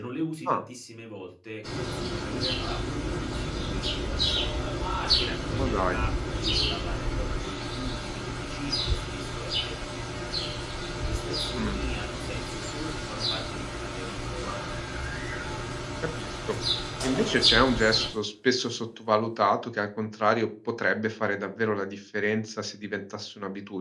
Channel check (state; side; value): identical; both; correlation 1.00